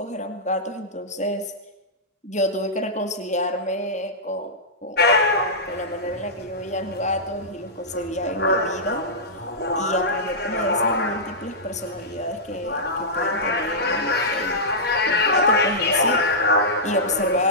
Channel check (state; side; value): normal; both; correlation -0.13